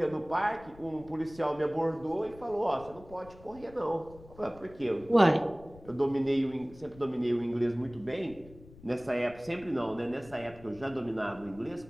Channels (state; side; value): noise; left; rumble, 20 dB below the sound